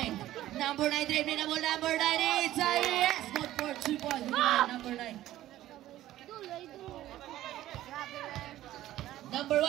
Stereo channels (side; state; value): left; quieter; 14.2 dB